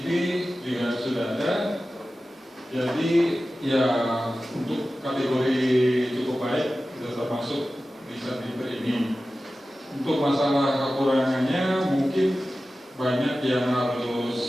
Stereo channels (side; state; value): both; normal; correlation 0.95